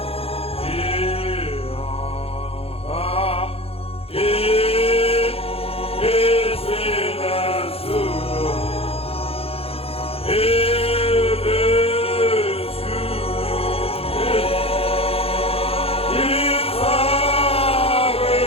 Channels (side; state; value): right; late; 0.28 ms